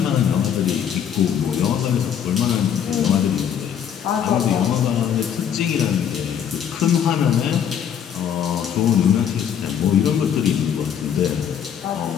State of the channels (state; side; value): quieter; right; 8.8 dB